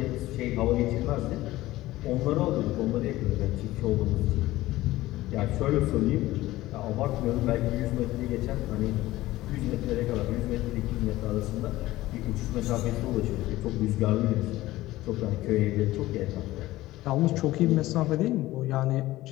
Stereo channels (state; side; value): quieter; right; 17.0 dB